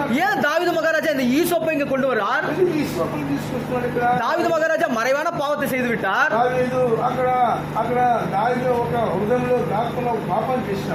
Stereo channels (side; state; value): both; identical; correlation 1.00